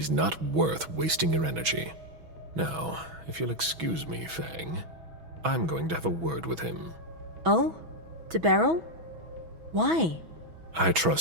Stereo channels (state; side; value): late; left; 6.1 ms